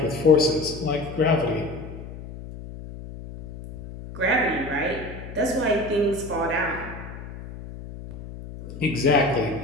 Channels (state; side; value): noise; left; hum, 12 dB below the sound